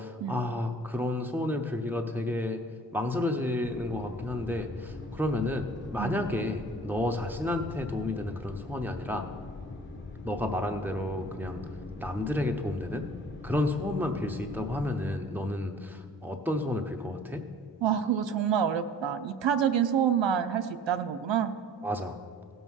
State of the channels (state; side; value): normal; both; correlation 0.50